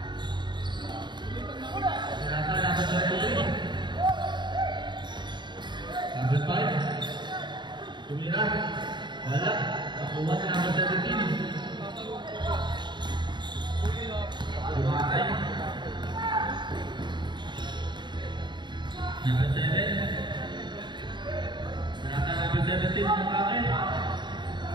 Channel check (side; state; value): left; late; 0.22 ms